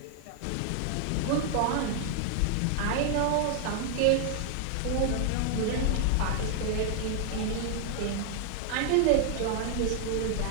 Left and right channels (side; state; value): both; different; correlation 0.00